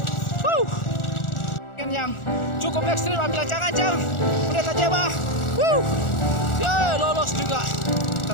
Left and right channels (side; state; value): right; late; 1.4 ms